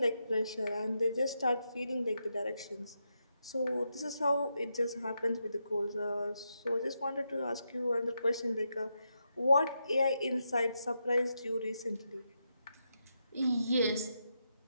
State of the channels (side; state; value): both; inverted; correlation -0.84